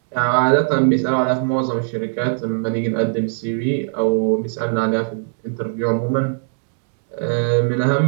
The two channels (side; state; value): left; silent; digital silence